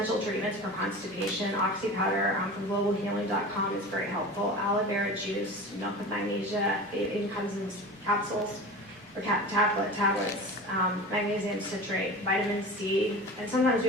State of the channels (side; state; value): both; normal; correlation 0.33